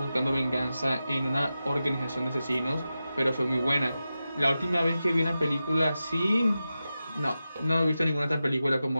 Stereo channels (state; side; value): inverted; both; correlation -0.92